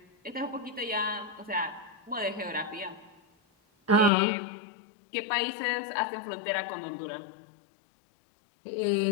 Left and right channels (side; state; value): right; drops out; at 4.1 s